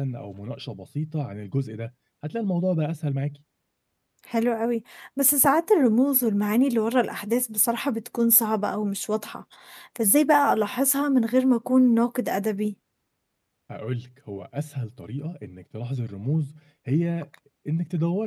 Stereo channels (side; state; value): both; identical; correlation 1.00